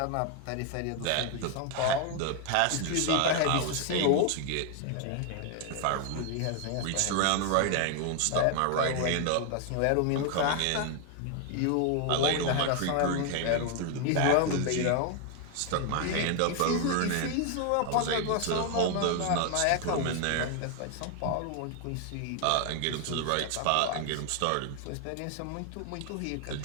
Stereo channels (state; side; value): different; both; correlation 0.01